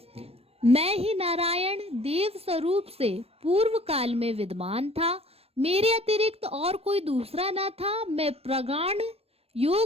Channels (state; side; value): late; left; 0.29 ms